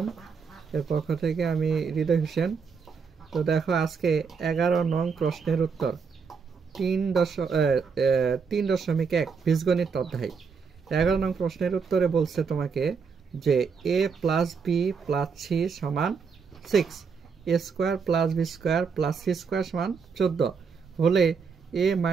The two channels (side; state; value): left; quieter; 5.6 dB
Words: এর পক্ষ থেকে আমি হৃদয় হোসেন। তো দেখো, আজকে 11 নং প্রশ্নের উত্তর 3.1 বীজগণিত অধ্যায়। 11 নং প্রশ্নের উত্তরে বলছে তোমাকে যে a plus B plus C সমান 6, a square plus B square plus C square সমান 14 হলে a